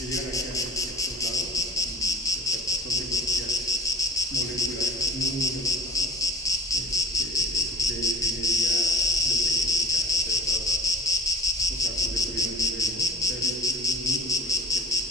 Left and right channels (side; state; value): both; normal; correlation 0.42